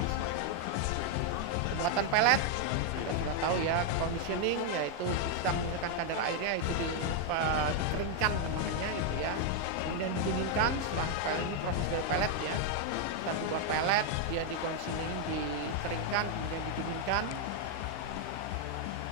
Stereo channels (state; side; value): different; both; correlation 0.00